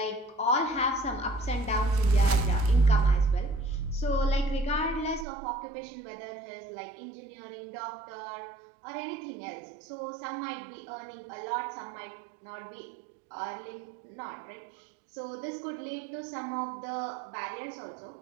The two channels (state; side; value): drops out; left; at 5.2 s